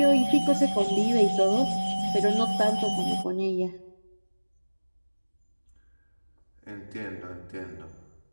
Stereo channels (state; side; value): inverted; both; correlation -1.00